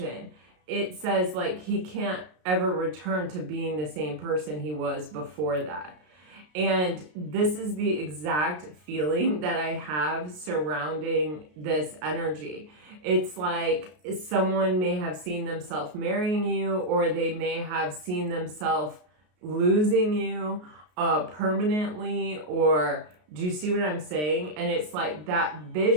It says like he can't ever return to being the same person he was before that. And this is the exact feeling that I have surrounding this energy. It's like someone may have seen themselves marrying you, or they may have seen themselves losing you permanently, or do you see what I'm saying? And it's like that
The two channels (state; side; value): late; left; 33 ms